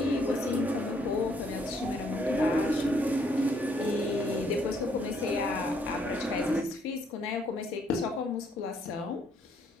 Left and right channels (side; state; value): both; normal; correlation 0.69